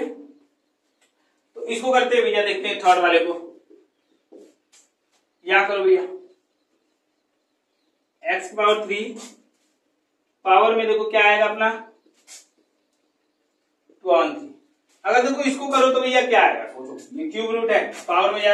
तो इसको करते हैं भैया, देखते हैं थर्ड वाले को, यहाँ करो भैया x पावर 3 पावर में देखो क्या आएगा अपना 2/3। अगर देखो इसको करो तो भैया क्या आएगा, सोचो, ये क्यूब रूट है, पावर में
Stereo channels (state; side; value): identical; both; correlation 1.00